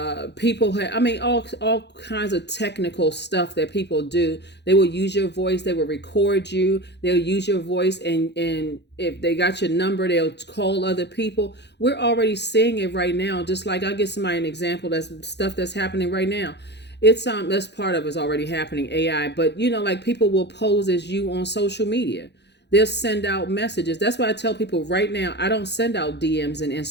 people have, all kinds of technical stuff that people do. They will use your voice. They will record you. They'll use your voice, and if they got your number, they'll call other people. We're already seeing it right now. Just like, I'll give somebody an example. That's stuff that's happening right now. It's that's part of it's already happening, AI. But like, people will pose as you on social media. They'll send out messages. That's why I tell people right now, I don't send out DMs and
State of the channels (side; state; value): right; late; 0.50 ms